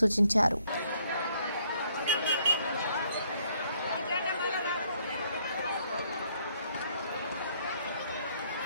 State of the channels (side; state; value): both; inverted; correlation -0.67